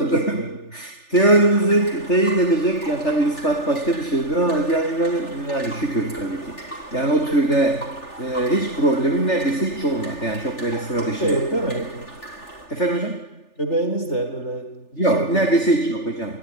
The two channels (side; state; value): right; late; 3.4 ms